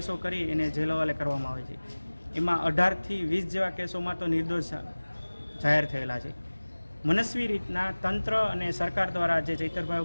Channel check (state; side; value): inverted; both; correlation -1.00